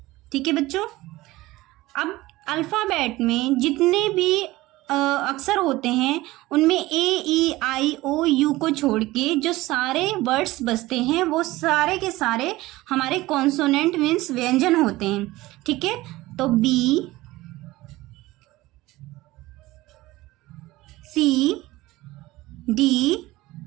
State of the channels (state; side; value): quieter; left; 18.6 dB